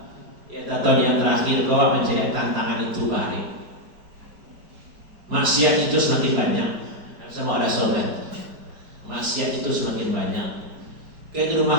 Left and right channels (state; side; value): late; left; 4.9 ms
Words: tahun yang terakhir kau mencari tantangan itu balik. Maksiat itu semakin banyak. Sama ada sobat. Maksiat itu semakin banyak. Kayak di